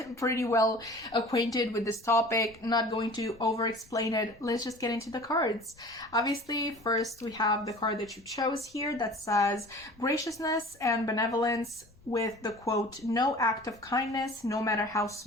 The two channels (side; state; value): left; noise; rumble, 28 dB below the sound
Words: pretty well acquainted with this topic. Not going to over-explain it. Let's just get into the cards. Obviously, first we have the card that you chose here that says graciousness and benevolence, with the quote, "No act of kindness, no matter how